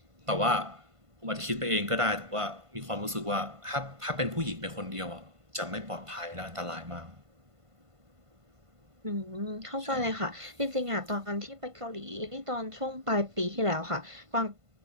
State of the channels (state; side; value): late; left; 1.5 ms